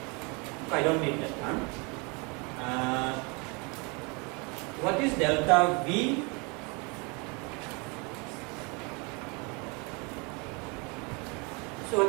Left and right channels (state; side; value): quieter; left; 30.5 dB